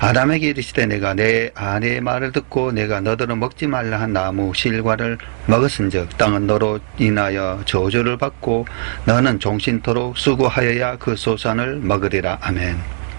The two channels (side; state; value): left; silent; 67 dB below the other